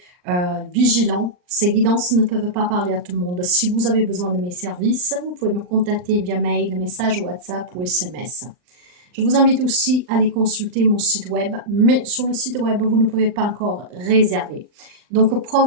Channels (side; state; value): left; late; 39 ms